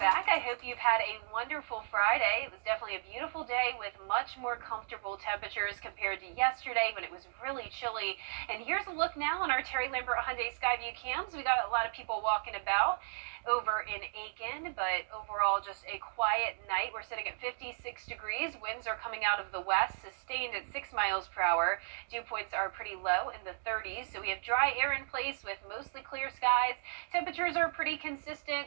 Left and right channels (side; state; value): left; silent; digital silence